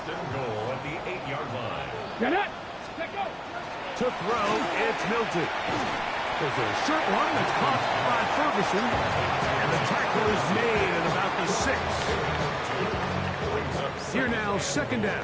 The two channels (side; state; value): both; identical; correlation 1.00